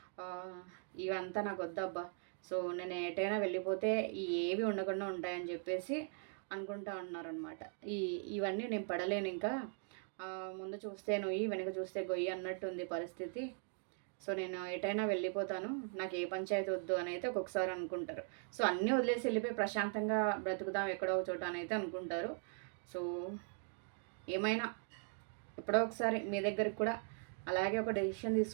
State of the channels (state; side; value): silent; left; 51 dB below the other